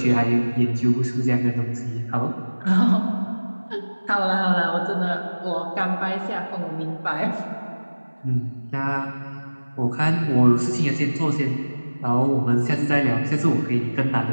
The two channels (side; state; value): both; inverted; correlation -1.00